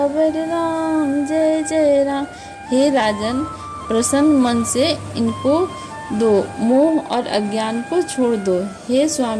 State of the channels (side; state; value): both; identical; correlation 1.00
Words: राम जय जय राम। हे राजन, प्रसन्न मन से इनको दो, मोह और अज्ञान को छोड़ दो। हे